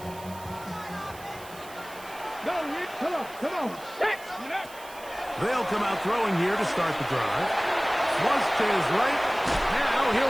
Come on. Set. They'll come out throwing here to start the drive. Flush to his right. Now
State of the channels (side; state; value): right; noise; hiss, 19 dB below the sound